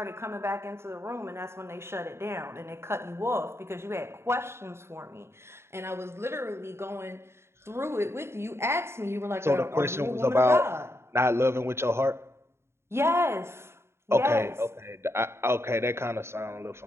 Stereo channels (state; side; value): late; left; 0.12 ms